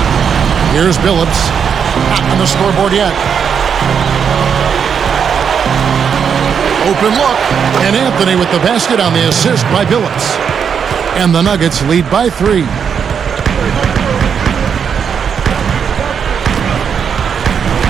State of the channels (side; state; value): left; quieter; 7.2 dB